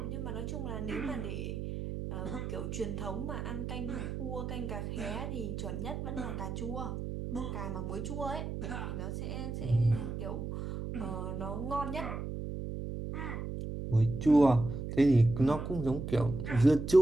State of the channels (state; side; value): noise; right; hum, 5 dB below the sound